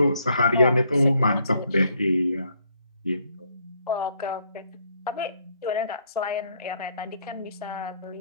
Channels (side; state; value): both; inverted; correlation -0.70